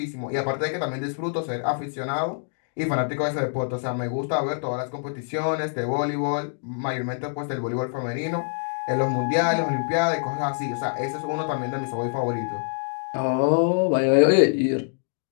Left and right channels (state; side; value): silent; right; digital silence